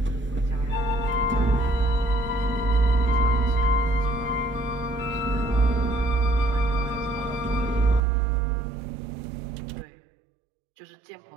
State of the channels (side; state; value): left; drops out; at 8.0 s